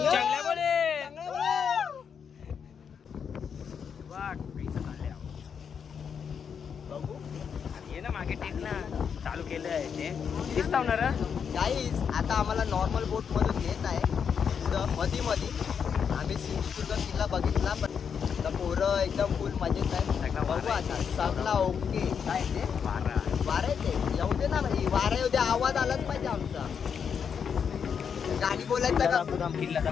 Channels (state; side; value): quieter; right; 7.0 dB